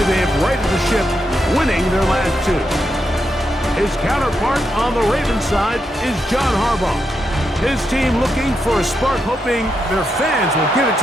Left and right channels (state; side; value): normal; both; correlation 0.83